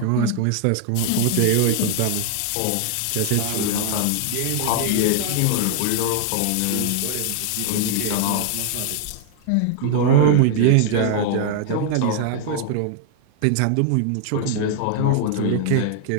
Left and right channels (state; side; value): different; both; correlation 0.00